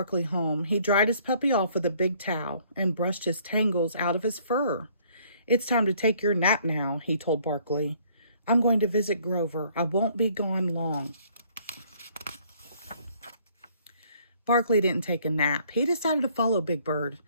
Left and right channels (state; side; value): inverted; both; correlation -0.62